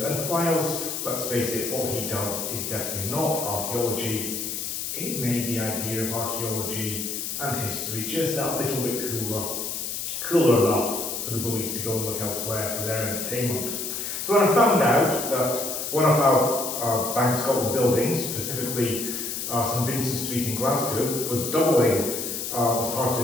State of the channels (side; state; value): left; noise; hiss, 4 dB below the sound